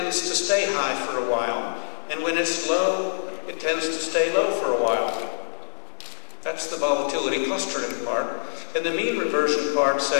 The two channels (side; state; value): right; silent; digital silence